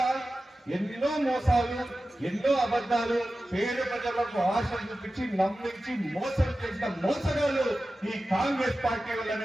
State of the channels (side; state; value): both; normal; correlation 0.94